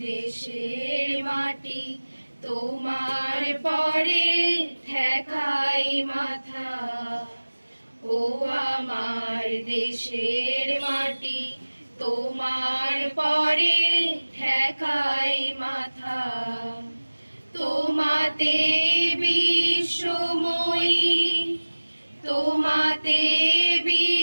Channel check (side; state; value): both; inverted; correlation -1.00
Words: দেশের মাটি তোমার পরে ঠেকাই মাথা, ও আমার দেশের মাটি তোমার পরে ঠেকাই মাথা। তোমাতে বিশ্বময়ী, তোমাতে